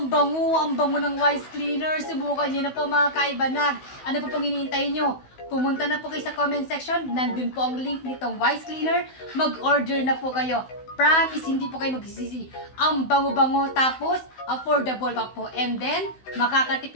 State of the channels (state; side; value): late; right; 16 ms